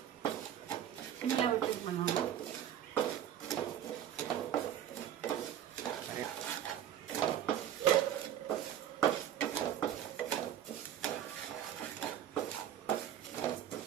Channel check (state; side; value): quieter; left; 10.6 dB